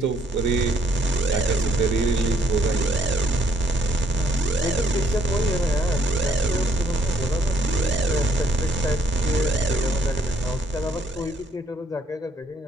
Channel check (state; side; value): normal; both; correlation 0.67